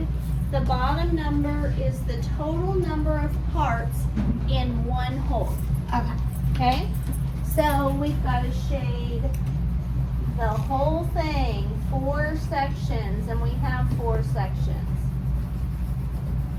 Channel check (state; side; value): identical; both; correlation 1.00